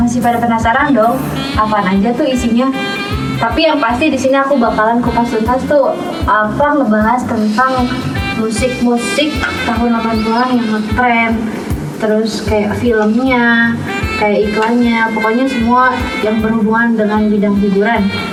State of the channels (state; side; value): identical; both; correlation 1.00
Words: pada penasaran dong apaan aja tuh isinya? Tapi yang pasti di sini aku bakalan kupas tuntas tuh ngebahas tentang musik-musik tahun 80-an yang ngetren, terus kayak filmnya, kayak iklannya, pokoknya semua yang berhubungan dengan bidang hiburan